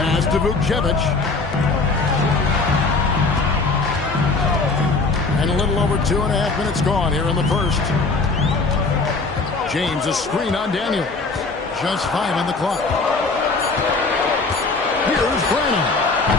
to Vukcevic. And a little over 2.5 minutes gone here in the first. James, a screen on Daniel. Just 5 on the clock. Here's Branham.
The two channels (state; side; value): quieter; right; 3.9 dB